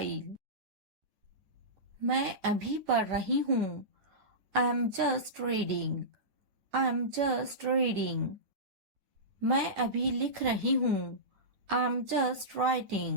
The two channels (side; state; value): left; late; 9.7 ms